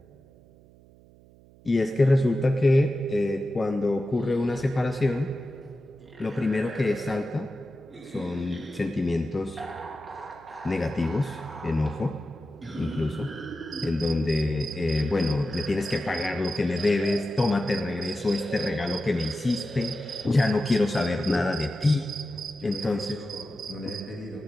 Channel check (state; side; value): noise; right; hum, 25 dB below the sound